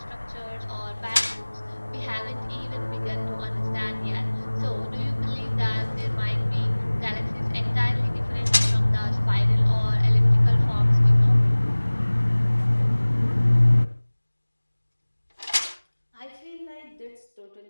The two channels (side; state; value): both; inverted; correlation -1.00